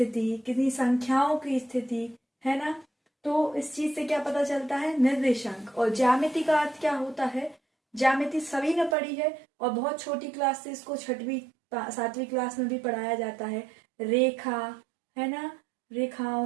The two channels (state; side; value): drops out; left; at 9.0 s